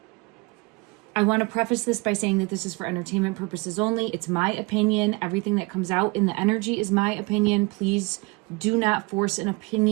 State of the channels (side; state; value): left; quieter; 27.0 dB